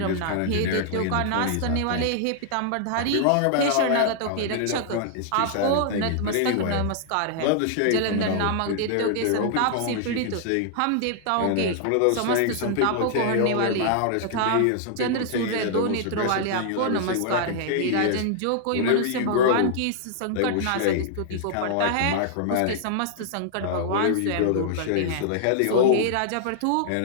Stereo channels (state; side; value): different; both; correlation -0.01